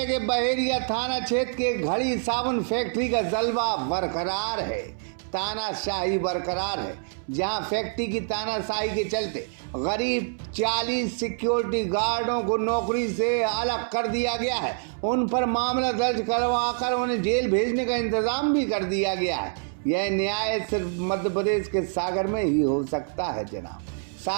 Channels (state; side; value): silent; left; 61 dB below the other